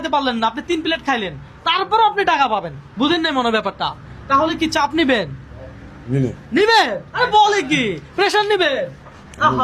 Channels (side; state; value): both; identical; correlation 1.00